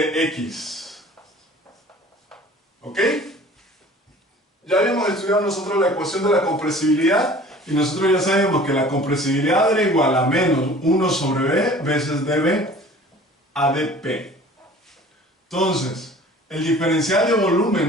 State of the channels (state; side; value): normal; both; correlation 0.46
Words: X. ¿Ok? Ya habíamos estudiado nosotros la ecuación de la compresibilidad y nosotros ya sabemos que la compresibilidad era igual a menos 1 sobre B veces dB a dP. Entonces, el diferencial de